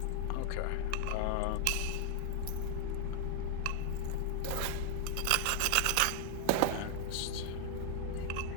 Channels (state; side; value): different; both; correlation 0.00